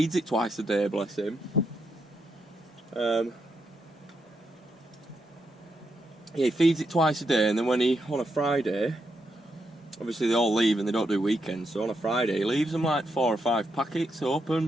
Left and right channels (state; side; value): normal; both; correlation 0.81